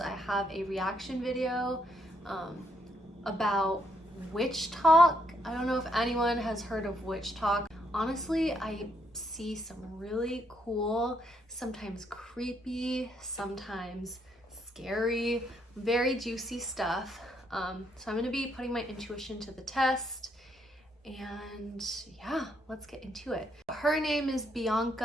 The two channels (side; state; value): both; normal; correlation 0.74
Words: have a reaction video about WitchTok. I don't know if anyone has heard of WitchTok. Honestly, I see some really cool, sometimes creepy, sometimes scary, very juicy stuff. So I'm gonna be putting my intuition to the test, and yeah, let's get into it. Her name is